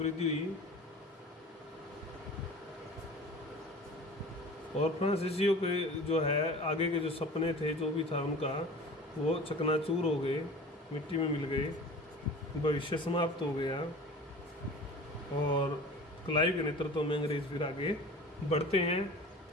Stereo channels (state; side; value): normal; both; correlation 0.40